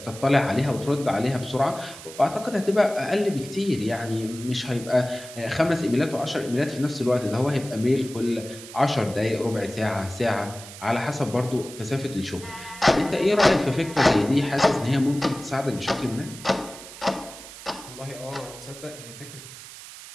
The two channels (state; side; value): noise; right; hiss, 15 dB below the sound